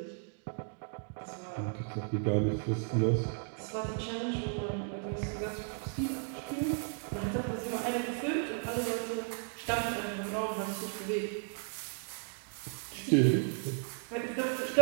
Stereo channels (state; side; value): silent; left; 55 dB below the other